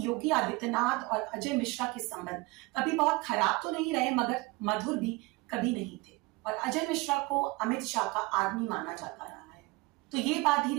योगी आदित्यनाथ और अजय मिश्रा के संबंध कभी बहुत खराब तो नहीं रहे, मगर मधुर भी कभी नहीं थे, और अजय मिश्रा को अमित शाह का आदमी माना जाता रहा है। तो ये बात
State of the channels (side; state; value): left; quieter; 23.8 dB